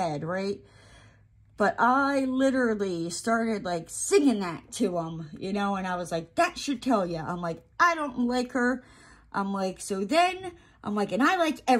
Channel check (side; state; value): both; identical; correlation 1.00